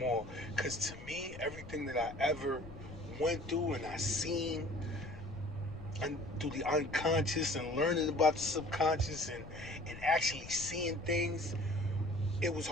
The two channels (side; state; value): left; noise; rumble, 14 dB below the sound